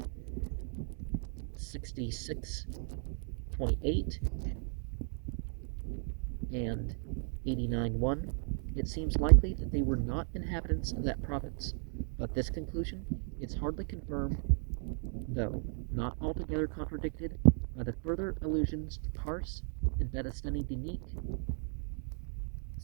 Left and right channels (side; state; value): left; silent; 54 dB below the other